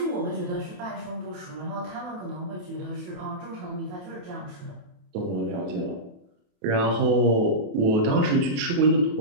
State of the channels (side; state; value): left; late; 28 ms